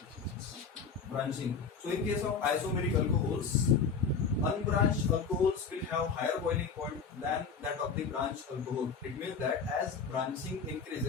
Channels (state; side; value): quieter; right; 5.6 dB